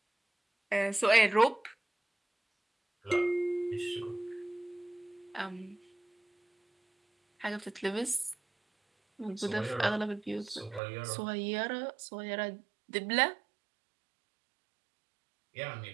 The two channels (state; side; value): drops out; left; at 10.8 s